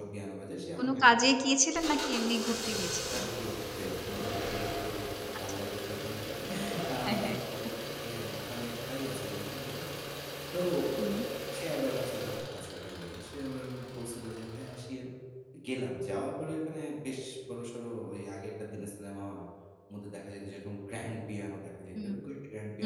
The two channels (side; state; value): both; identical; correlation 1.00